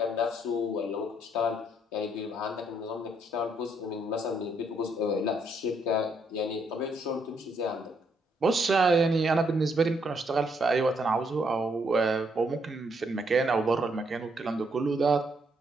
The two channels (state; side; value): normal; both; correlation 0.73